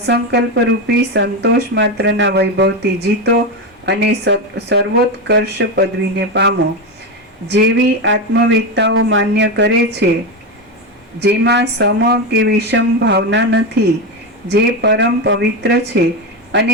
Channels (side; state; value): both; normal; correlation 0.14